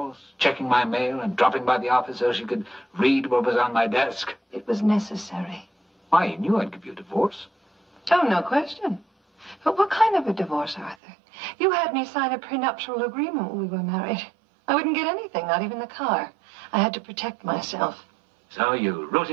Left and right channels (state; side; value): drops out; left; at 11.0 s